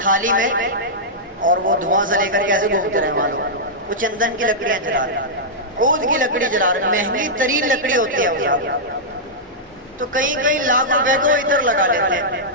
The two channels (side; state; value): both; normal; correlation -0.10